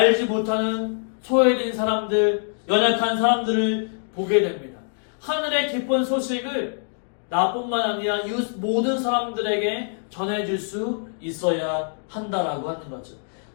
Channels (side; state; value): right; silent; 63 dB below the other